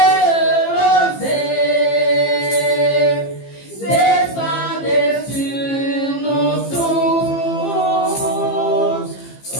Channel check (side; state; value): right; late; 15 ms